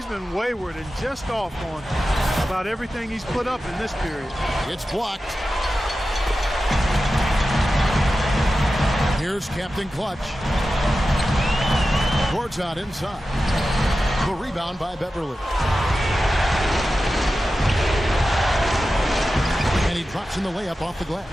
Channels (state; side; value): normal; both; correlation 0.93